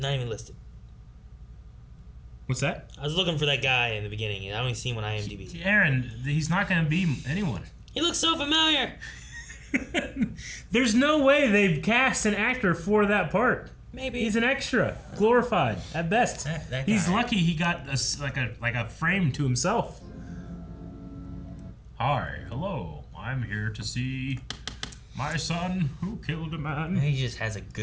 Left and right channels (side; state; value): both; identical; correlation 1.00